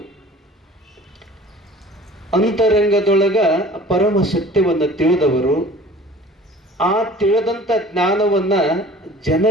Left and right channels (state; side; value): normal; both; correlation 0.46